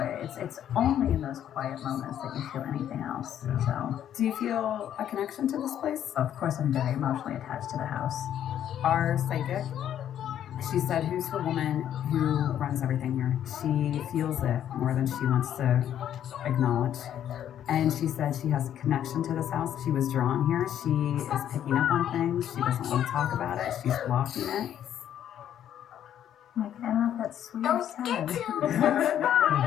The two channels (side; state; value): right; quieter; 10.4 dB